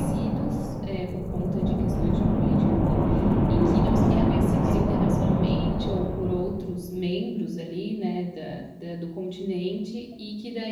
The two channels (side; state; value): both; identical; correlation 1.00